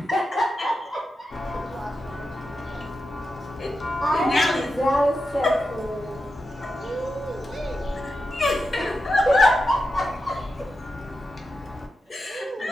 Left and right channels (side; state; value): both; normal; correlation 0.89